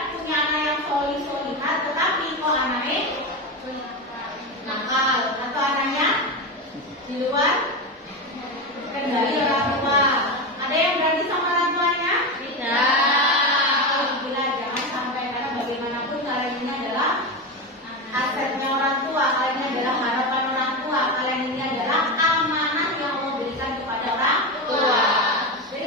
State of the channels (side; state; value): both; normal; correlation 0.17